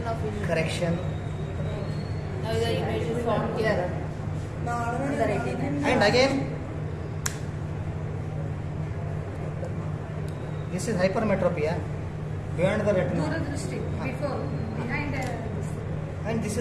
of vision. Correction. Now the image is formed here. On the retina. And again this is hypermetropia beyond the retina. Before, behind. And this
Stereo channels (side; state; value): both; identical; correlation 1.00